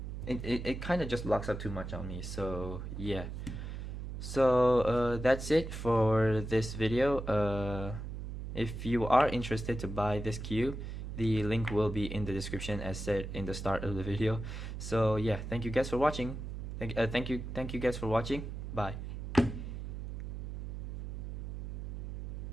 it kind of just locks up too much on me. So yeah, so that's it for this video. If you are interested to buy this cube, the link will be in the description as said in the start of the video. So yeah, thank you guys for watching. Thank you guys for watching. Bye.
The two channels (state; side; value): noise; right; hum, 7 dB below the sound